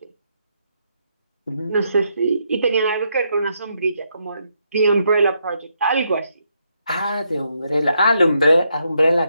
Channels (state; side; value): inverted; both; correlation -0.78